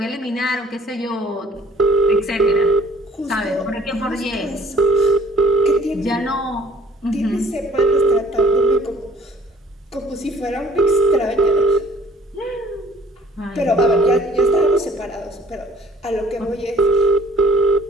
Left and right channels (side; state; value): both; normal; correlation 0.56